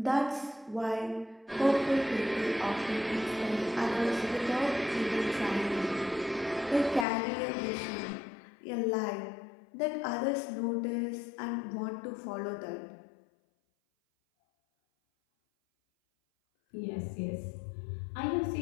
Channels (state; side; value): drops out; right; at 7.1 s